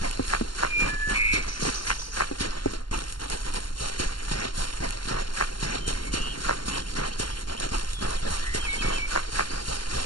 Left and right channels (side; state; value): right; late; 0.72 ms